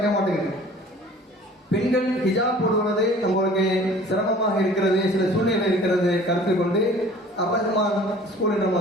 மாட்டேங்குது. பெண்கள் ஹிஜாப் போடுவது நம்மளுக்கு சிரமமாக இருக்கிறது, சில சூழ்நிலை இருக்கிறது கருத்து கொண்டு அப்பரஹ்மான் ஸ்கூலை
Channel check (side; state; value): both; normal; correlation 0.48